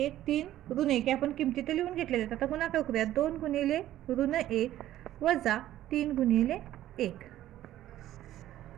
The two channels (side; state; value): left; quieter; 13.4 dB